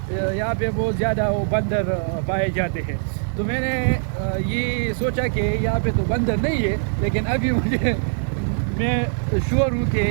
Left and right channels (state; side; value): silent; left; digital silence